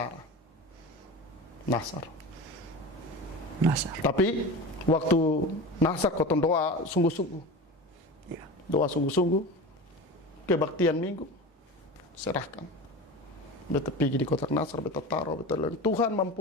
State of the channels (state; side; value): normal; both; correlation 0.30